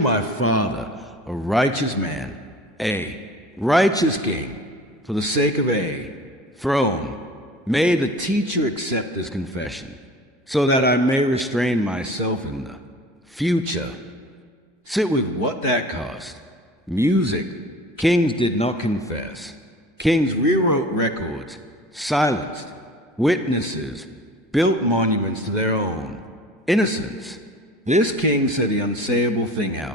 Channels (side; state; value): both; normal; correlation 0.43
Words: my father, a righteous man, a righteous king, for the sake of a throne. May the teacher accept this confession, so that I may restrain myself in the future. Sit with what that cost. Music. Kings did not confess. Kings rewrote records, silenced witnesses, built monuments to their own innocence. This king said the unsayable thing